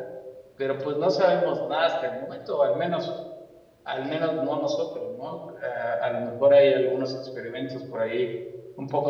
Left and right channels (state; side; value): identical; both; correlation 1.00